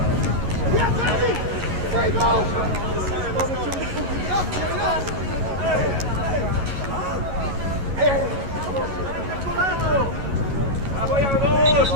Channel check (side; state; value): left; late; 11 ms